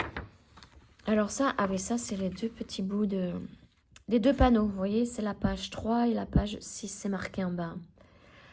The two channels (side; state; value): both; identical; correlation 1.00